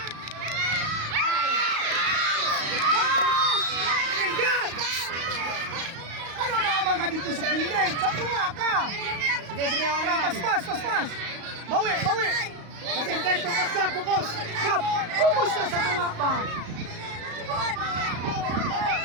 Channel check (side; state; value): left; late; 35 ms